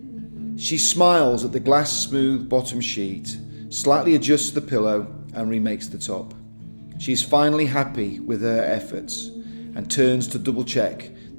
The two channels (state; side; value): inverted; both; correlation -1.00